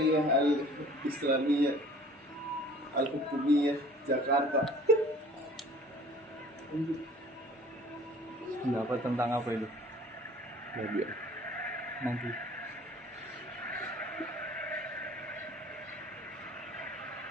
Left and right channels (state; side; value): normal; both; correlation 0.49